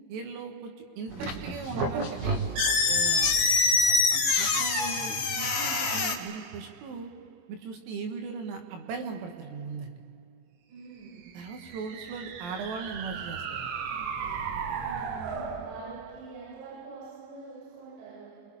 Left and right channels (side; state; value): left; late; 22 ms